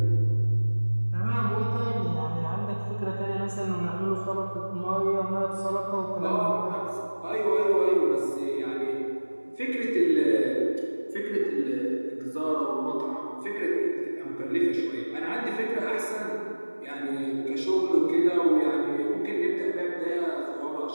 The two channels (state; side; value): inverted; both; correlation -1.00